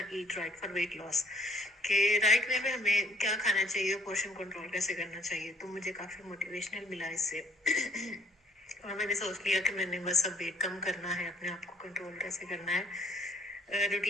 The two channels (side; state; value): both; normal; correlation 0.61